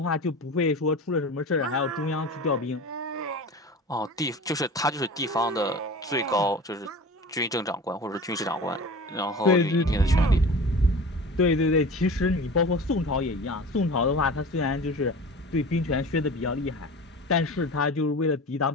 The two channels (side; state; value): both; normal; correlation 0.36